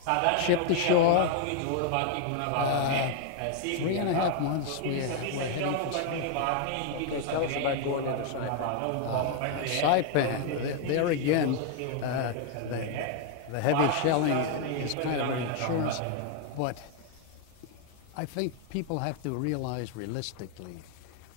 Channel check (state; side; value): different; both; correlation 0.00